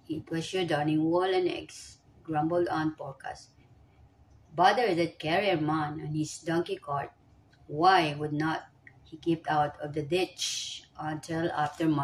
it was your darning wall and eggs, grumbled Aunt Dorcas. Bother that carrier man and his donkey cart. Why would not he keep out of the ditch until after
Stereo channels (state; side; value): identical; both; correlation 1.00